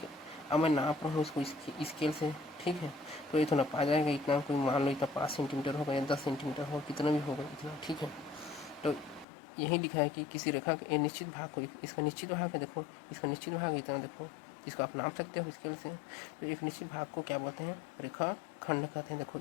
अब मैं नाप रहा हूँ इसको स्केल से, ठीक है। तो ये तो नापा जाएगा, इतना कोई मान लो इतना 5 सेंटीमीटर होगा या 10 सेंटीमीटर होगा, कितना भी होगा इतना, ठीक है। तो यही लिखा है कि किसी रेखा के निश्चित भाग को, इसका निश्चित भाग है, देखो इसका निश्चित भाग इतना, देखो इसको आप नाप सकते हो स्केल से। तो एक निश्चित भाग को क्या बोलते हैं, रेखा खंड कहते हैं। देखो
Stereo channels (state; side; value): drops out; right; at 9.2 s